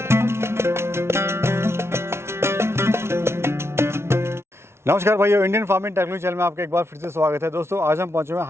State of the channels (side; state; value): left; late; 0.12 ms